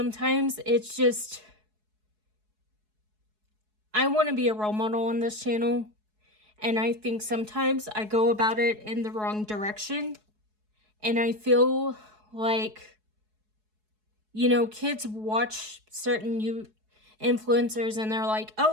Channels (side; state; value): left; late; 4.7 ms